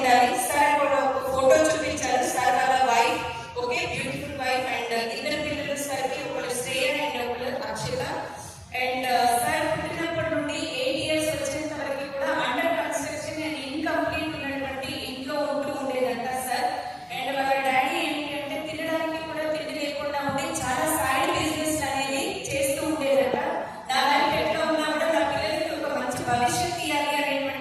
సార్ కూడా ఒక ఫోటో చూపించారు. సార్ వాళ్ళ wife okay beautiful wife and ఇద్దరు పిల్లలు సార్ కి ఒకరు శ్రేయ అండ్ ఒకరు అక్షత. అండ్ సార్ పుట్టినప్పటి నుండి 8 years వచ్చేంత వరకు కూడా అండర్ కన్స్ట్రక్షన్ అండ్ ఇన్కంప్లీట్ ఉన్నటువంటి ఇంట్లో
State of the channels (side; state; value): both; identical; correlation 1.00